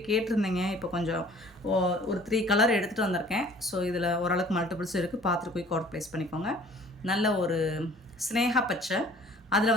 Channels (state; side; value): normal; both; correlation 0.52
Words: கேட்டிருந்தேங்க. இப்போ கொஞ்சம் ஒரு 3 கலர் எடுத்துகிட்டு வந்திருக்கேன். ஸோ இதில் ஓரளவுக்கு மல்டிபிள்ஸ் இருக்குது, பார்த்துட்டு போய் ஆர்டர் ப்ளேஸ் பண்ணிக்கோங்க. நல்ல ஒரு ஸ்னேகா பச்சை, அதில்